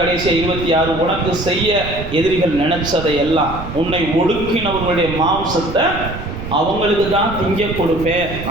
26, உனக்கு செய்ய எதிரிகள் நினைச்சதை எல்லாம் உன்னை ஒடுக்கினவர்களுடைய மாம்சத்தை அவங்களுக்கு தான் திங்க கொடுப்பேன்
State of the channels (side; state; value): right; noise; rumble, 10 dB below the sound